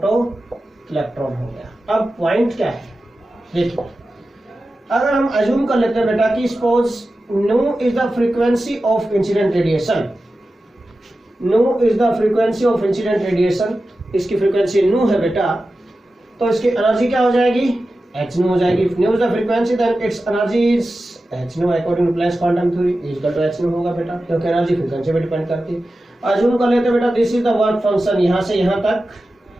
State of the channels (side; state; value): both; normal; correlation 0.93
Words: इलेक्ट्रॉन हो गया। अब पॉइंट क्या है, देखिए अगर हम अज्यूम कर लेते हैं बेटा कि suppose new is the frequency of incident radiation, new is the frequency of incident radiation, इसकी फ्रीक्वेंसी न्यू है बेटा, तो इसकी एनर्जी क्या हो जाएगी, एच न्यू हो जाएगी। Nu is the frequency then it's energy is h nu according to Planck's quantum theory is equal to H nu होगा बेटा, क्योंकि एनर्जी फ्रीक्वेंसी पे डिपेंड करती है। अज्यूम कर लेते हैं बेटा this is the work function, यहां से यहां तक